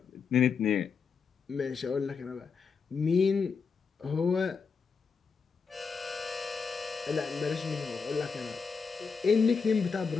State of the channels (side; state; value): right; quieter; 5.5 dB